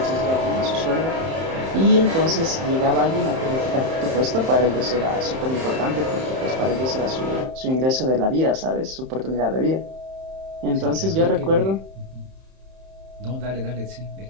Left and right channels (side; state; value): left; late; 31 ms